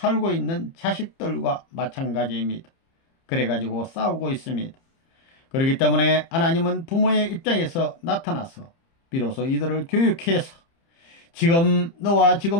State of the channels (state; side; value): late; right; 30 ms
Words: 있는 자식들과 마찬가지입니다. 그래가지고 싸우고 있습니다. 그렇기 때문에 하나님은 부모의 입장에서 나타나서 비로소 이들을 교육해서 너와